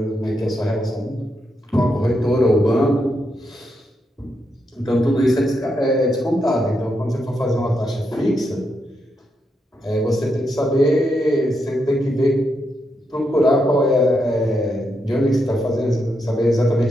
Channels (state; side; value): normal; both; correlation 0.82